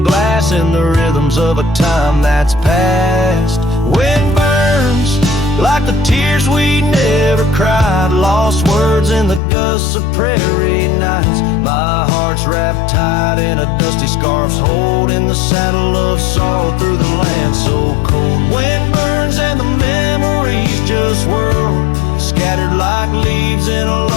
glass in the rhythms of a time that's past. Wind burns like the tears we never cried, lost words in the gusts of prairie nights. My heart's wrapped tight in a dusty scarf's holding the saddle of sorrow through the land so cold. Wind burns and the memories just whirl, scattered like leaves in a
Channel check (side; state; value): right; drops out; at 9.4 s